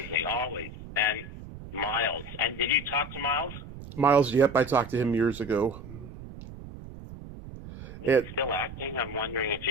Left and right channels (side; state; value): right; noise; rumble, 13 dB below the sound